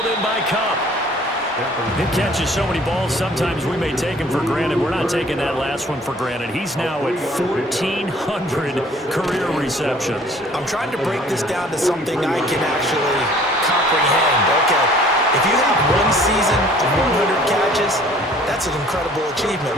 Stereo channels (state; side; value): normal; both; correlation 0.54